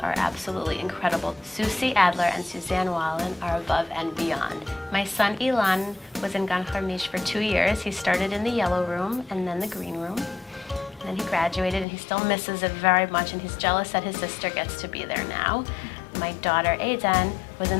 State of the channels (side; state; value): right; drops out; at 11.9 s